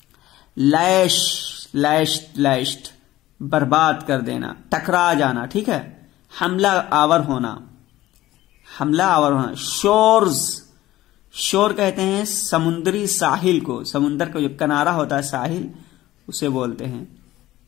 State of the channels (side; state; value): right; quieter; 15.7 dB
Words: लैश्ड बर्बाद कर देना, टकरा जाना, ठीक है, हमला आवर होना। शोर्स, शोर कहते हैं समुद्री साहिल को, समुद्र का जो किनारा होता है साहिल, उसे बोलते हैं